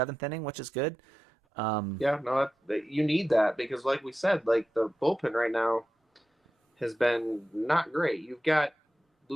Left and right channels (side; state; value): both; normal; correlation 0.91